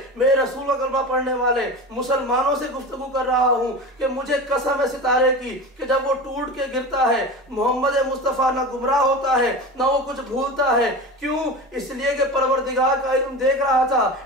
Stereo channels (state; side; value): normal; both; correlation 0.29